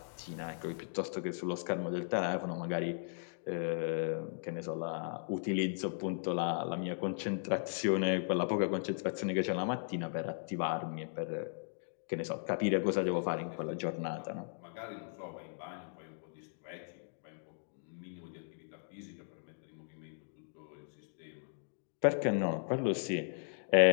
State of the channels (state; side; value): silent; right; digital silence